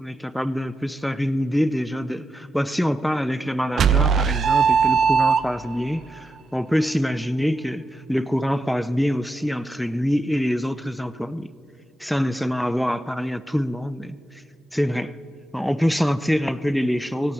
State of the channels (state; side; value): normal; both; correlation 0.88